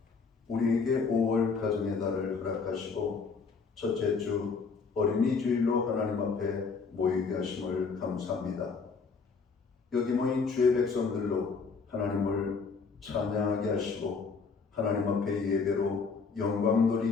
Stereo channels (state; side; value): quieter; right; 5.0 dB